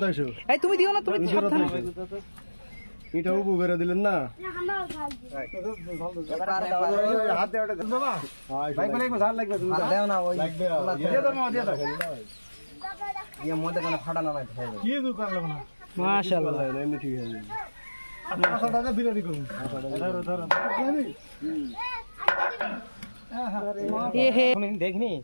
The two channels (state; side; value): inverted; both; correlation -1.00